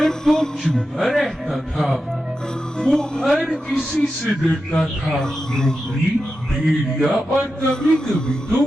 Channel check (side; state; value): both; normal; correlation 0.90